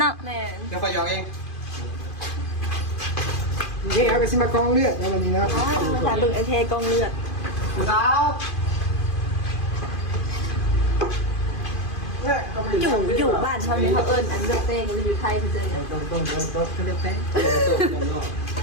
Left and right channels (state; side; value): late; right; 2.5 ms